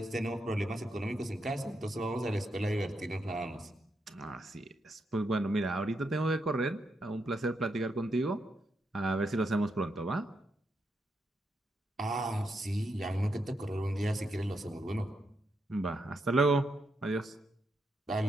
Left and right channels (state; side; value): normal; both; correlation 0.82